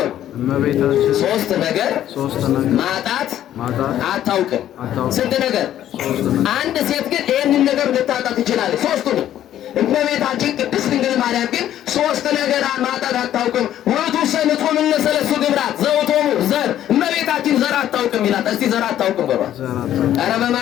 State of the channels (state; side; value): quieter; right; 11.7 dB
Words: ሶስት ነገር ማጣት አታውቅም። ስንት ነገር? አንድ ሴት ግን ይሄንን ነገር ልታጣት ትችላለች። ሶስቱንም እመቤታችን ቅድስት ድንግል ማርያም ግን ሶስት ነገር ማጣት አታውቅም። ወቱ ሰንጾም እነሰለሱ ግብራት ዘውቶሙ ዘር እመቤታችን ዘር አታውቅም ይላል። እስቲ ዘር አታውቅም በባ ኧረ